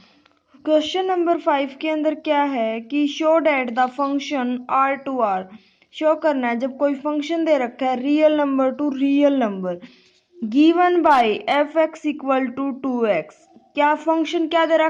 क्वेश्चन नंबर 5 के अंदर क्या है कि show that the function R to R show करना है जब कोई फंक्शन दे रखा है real number to real number given by f x equal to 2x। क्या फंक्शन क्या दे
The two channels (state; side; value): identical; both; correlation 1.00